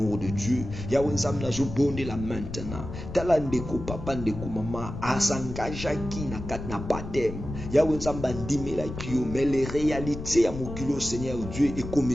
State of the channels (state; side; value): noise; left; rumble, 9 dB below the sound